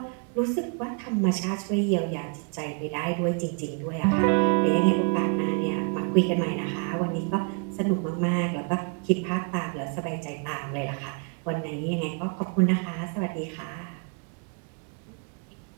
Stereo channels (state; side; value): quieter; left; 37.8 dB